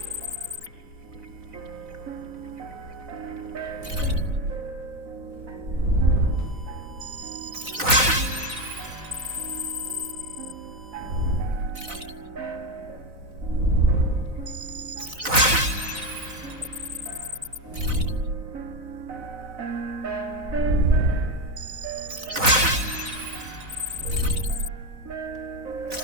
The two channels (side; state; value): left; late; 4.0 ms